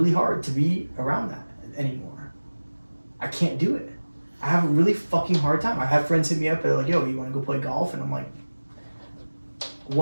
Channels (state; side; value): inverted; both; correlation -1.00